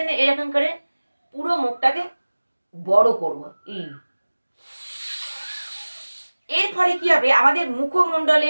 এরকম করে পুরো মুখটাকে বড় করব। এর ফলে কি হবে, আমাদের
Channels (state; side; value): inverted; both; correlation -1.00